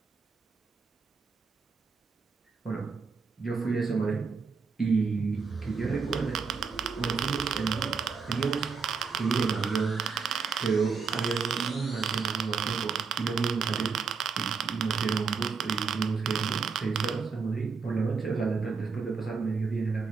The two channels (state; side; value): quieter; left; 5.2 dB